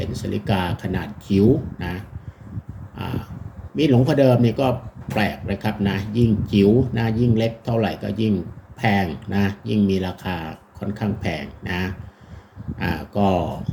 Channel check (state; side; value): identical; both; correlation 1.00